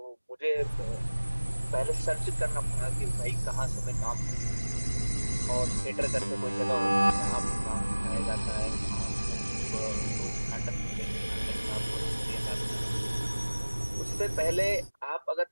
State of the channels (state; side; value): inverted; both; correlation -1.00